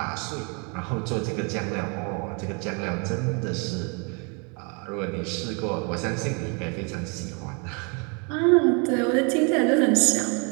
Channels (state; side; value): quieter; left; 34.4 dB